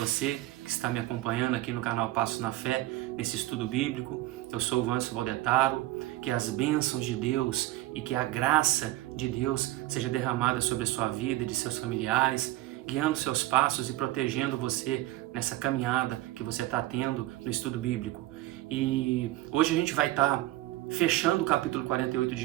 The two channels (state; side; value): quieter; left; 16.5 dB